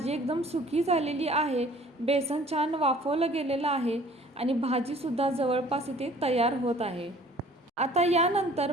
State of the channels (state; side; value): normal; both; correlation 0.52